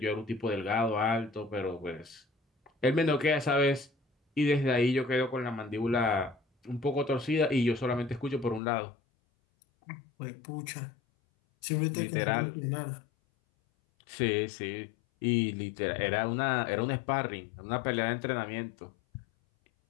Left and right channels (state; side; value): drops out; right; at 8.6 s